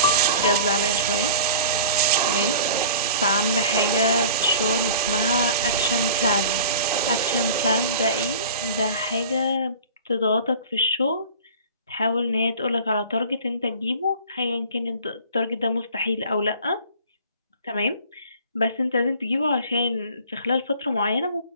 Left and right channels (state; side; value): inverted; both; correlation -0.42